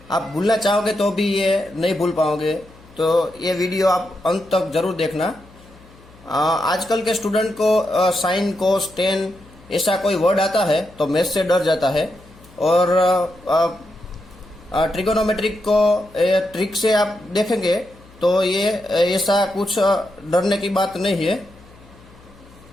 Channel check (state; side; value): noise; left; hum, 25 dB below the sound